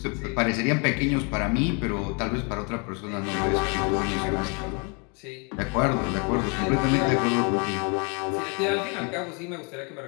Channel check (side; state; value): right; quieter; 34.2 dB